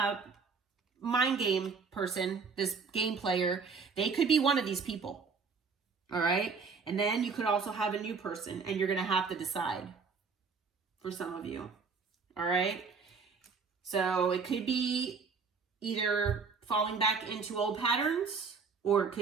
mind game person, this game player, they could be one of these people. All right, and then you could also have a new person, and you're going to have to decide for some of you. All right, so it could be either falling back into old patterns, or it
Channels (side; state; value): left; quieter; 5.1 dB